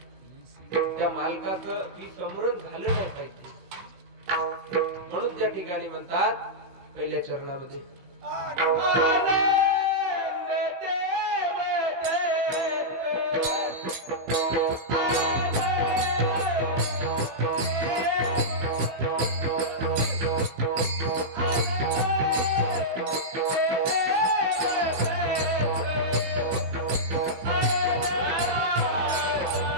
त्या मालकाचं विस्मरण झालं नाही पाहिजे. म्हणून त्या ठिकाणी म्हणतात पहिल्या चरणामध्ये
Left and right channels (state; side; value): late; left; 16 ms